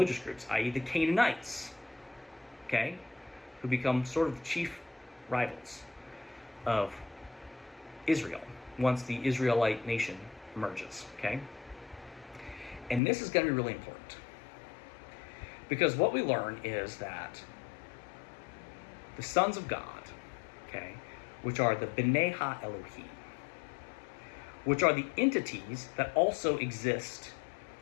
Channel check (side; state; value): right; drops out; at 13.0 s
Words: groups, i.e. the Canaanites, okay, who become sort of the chief rivals of Israel once the Israelite nation emerges, okay? And this is going to be really important, because what we learn is that the sons of God, okay, which are the B'nai Ha-Elohim, which are the entities that also exist